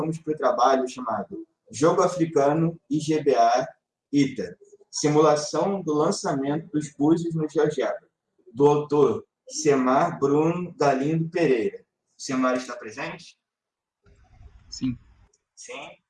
para o trabalho chamado Jogo Africano IGBA ITA, simulação do lançamento dos búzios no GeoGebra, do autor Semar Bruno Galindo Pereira. O Semar está presente? Sim. Sim?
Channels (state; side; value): identical; both; correlation 1.00